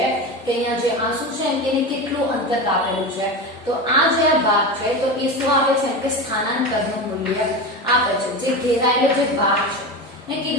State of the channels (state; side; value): normal; both; correlation 0.23